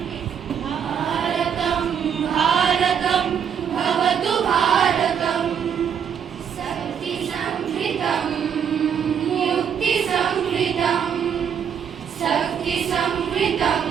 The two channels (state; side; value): quieter; left; 7.9 dB